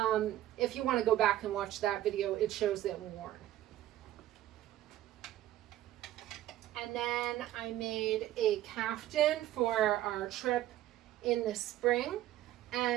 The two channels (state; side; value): quieter; left; 13.7 dB